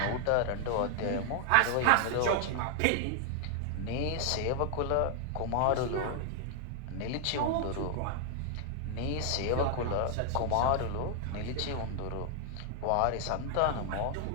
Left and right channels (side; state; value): both; different; correlation 0.00